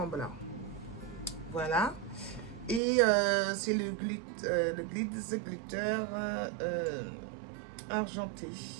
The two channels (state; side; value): drops out; left; at 2.8 s